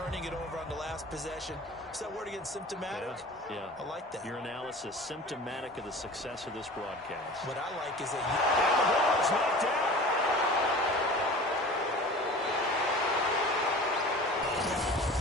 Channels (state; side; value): normal; both; correlation 0.39